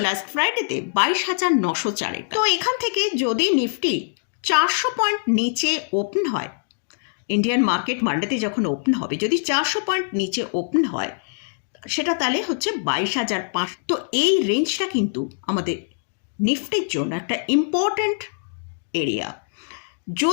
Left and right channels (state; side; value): silent; right; digital silence